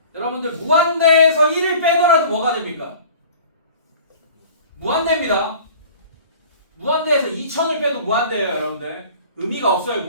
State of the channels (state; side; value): inverted; both; correlation -0.45